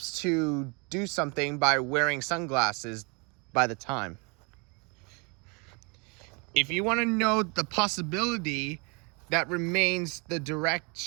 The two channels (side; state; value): left; quieter; 31.7 dB